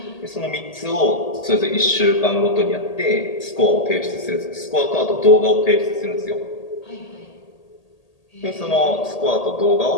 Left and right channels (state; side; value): late; right; 1.8 ms